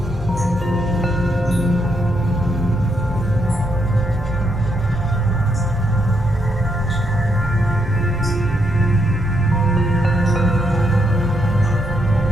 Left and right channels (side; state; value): both; normal; correlation 0.77